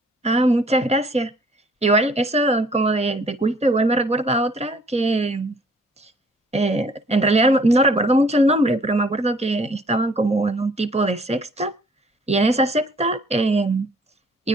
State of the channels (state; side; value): normal; both; correlation 0.58